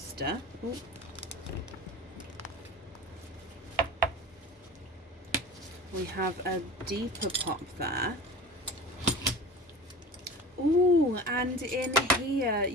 oh, we have a deeper pop there. Oh, and in here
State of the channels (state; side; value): normal; both; correlation 0.35